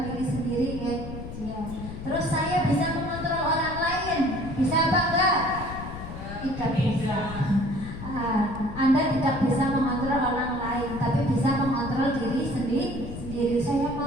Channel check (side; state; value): left; noise; rumble, 9 dB below the sound